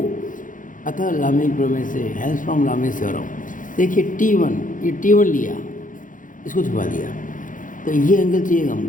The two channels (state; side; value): late; right; 0.38 ms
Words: अतः लामी प्रमेय से, हेल्स फ्रॉम लामी थ्योरम। देखिए T1, ये T1 लिया, इसको छुपा दिया, तो ये एंगल चाहिए